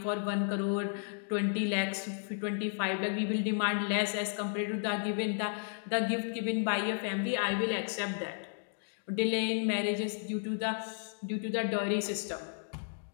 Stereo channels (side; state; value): right; silent; digital silence